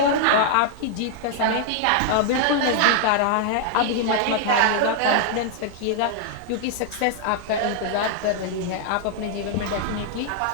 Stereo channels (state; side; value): different; both; correlation 0.00